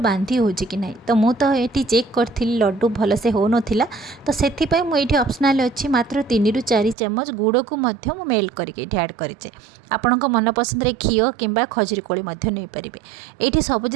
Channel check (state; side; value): drops out; left; at 7.0 s